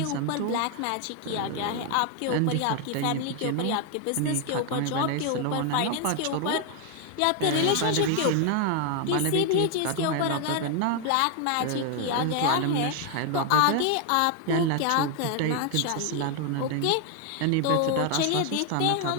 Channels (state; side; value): different; both; correlation 0.01